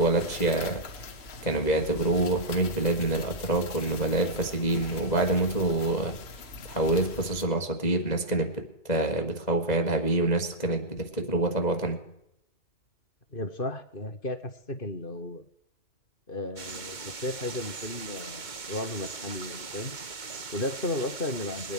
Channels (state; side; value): late; right; 2.2 ms